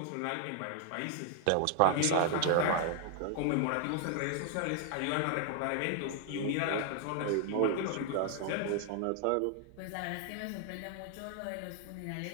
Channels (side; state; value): both; different; correlation 0.00